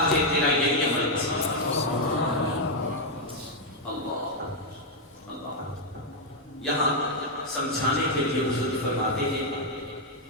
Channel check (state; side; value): normal; both; correlation 0.00